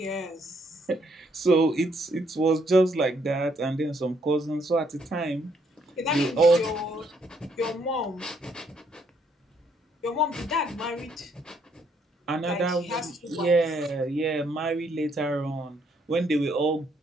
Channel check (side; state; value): both; normal; correlation 0.70